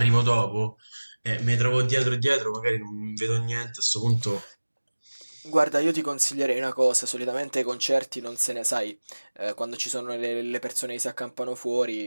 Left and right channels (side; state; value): both; inverted; correlation -1.00